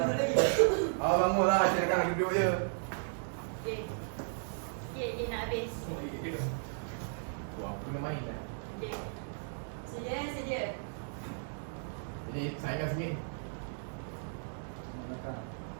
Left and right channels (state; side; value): silent; left; digital silence